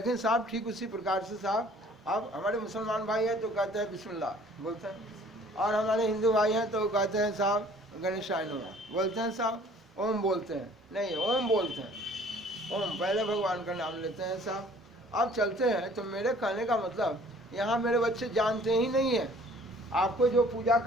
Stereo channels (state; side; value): normal; both; correlation 0.54